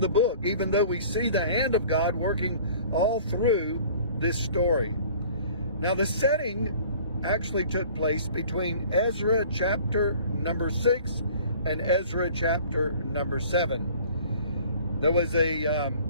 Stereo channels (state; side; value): inverted; both; correlation -0.49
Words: book, even though we see the hand of God working all through this story. Now, the setting actually took place between Ezra chapter number 6 and Ezra chapter number 7. There was a